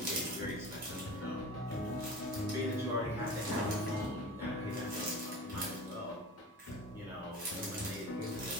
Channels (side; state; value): both; normal; correlation 0.36